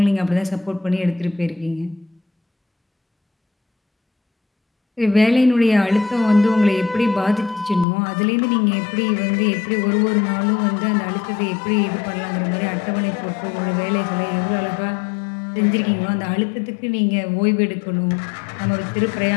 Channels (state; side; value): drops out; right; at 7.9 s